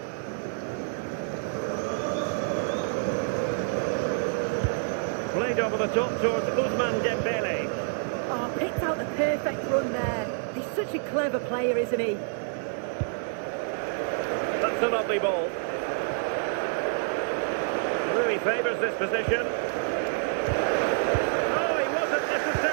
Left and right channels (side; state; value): left; silent; 60 dB below the other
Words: Played over the top towards Ousmane Dembele. Oh, picked out the perfect run there. He's such a clever player, isn't he? That's a lovely ball. Really favours this position. Oh, he wasn't